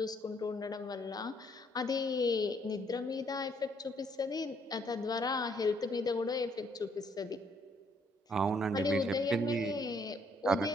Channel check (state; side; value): normal; both; correlation 0.68